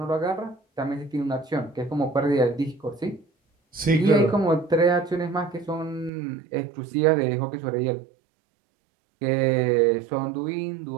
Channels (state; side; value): drops out; left; at 6.1 s